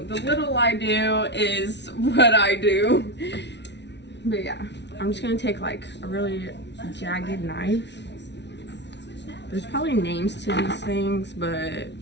the little I do is what I do. But yeah, I'm just gonna take like a really jagged knife. There's probably names to these things, but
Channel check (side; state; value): right; late; 0.50 ms